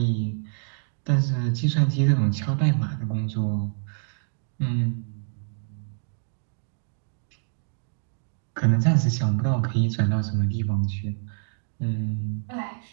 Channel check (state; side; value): silent; left; digital silence